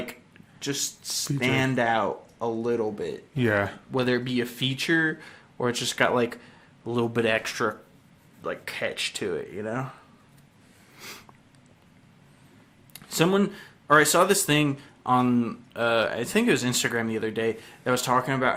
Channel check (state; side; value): identical; both; correlation 1.00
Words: just stand out a little bit. Yeah. Whether it be a feature or it's just got, like, a little bit extra, like, catch to it, you know? I saw this thing on, I think it was Instagram the other day, that was talking